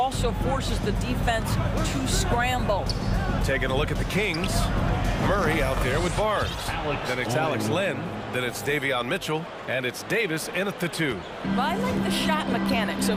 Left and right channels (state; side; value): identical; both; correlation 1.00